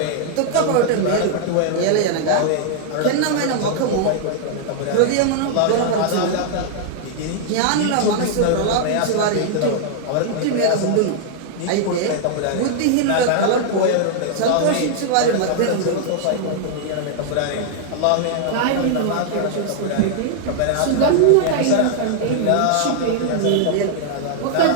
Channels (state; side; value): different; both; correlation -0.01